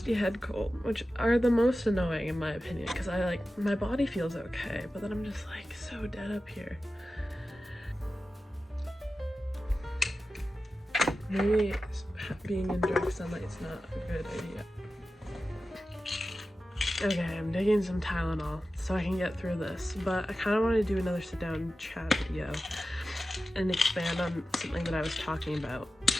head cold, which are the most annoying in my opinion, because my body feels okay, but then I'm just like so dead up here. Maybe being in direct sunlight is not a good idea. Okay, I'm digging some Tylenol so I can get through this, but I kind of want to do another sit down chat video and expand on something that I was talking about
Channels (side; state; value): both; normal; correlation 0.94